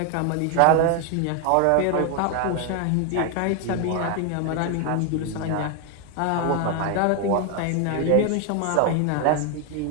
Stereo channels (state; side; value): different; both; correlation 0.00